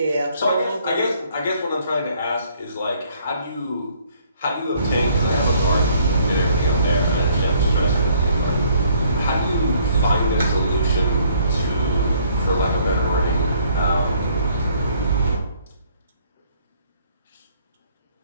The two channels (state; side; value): inverted; both; correlation -0.63